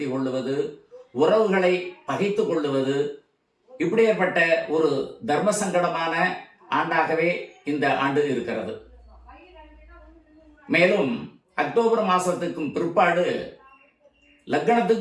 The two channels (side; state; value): both; identical; correlation 1.00